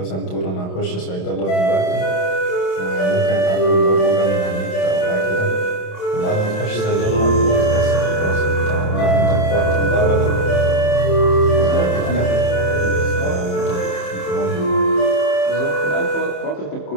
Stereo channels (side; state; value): right; late; 27 ms